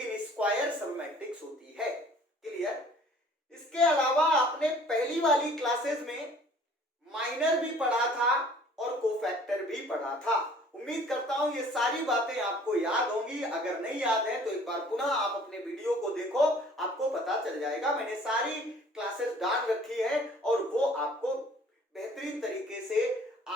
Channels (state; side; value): normal; both; correlation 0.53